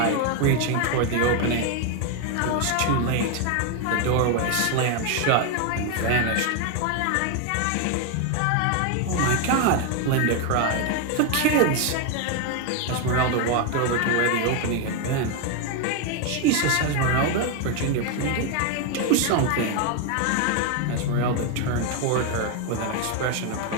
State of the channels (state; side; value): different; both; correlation 0.01